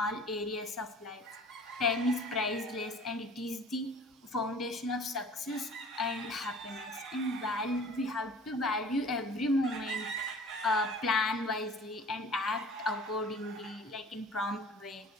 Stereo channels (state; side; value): normal; both; correlation 0.46